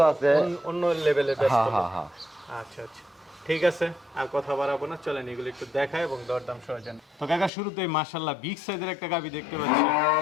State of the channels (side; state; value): right; drops out; at 7.5 s